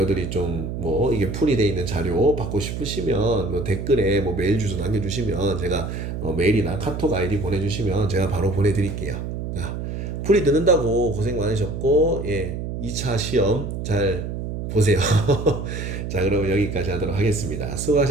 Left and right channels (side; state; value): right; noise; hum, 5 dB below the sound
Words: 좀 뭐 이게 풀이 돼 있는 자료 받고 싶으시면 뭐 댓글에 뭐 메일 주소 남겨주시면 제가 메일이나 카톡 아이디 보내주시면 제가 바로 보내드릴게요. 자, 풀이 듣는다고 고생 많으셨고, 예, 2차 시험 잘 보세요. 자, 그러면 여기까지 하도록 하겠습니다.